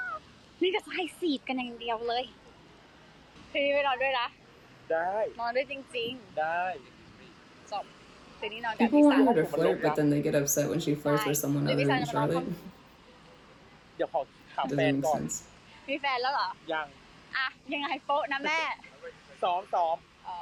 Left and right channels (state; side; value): identical; both; correlation 1.00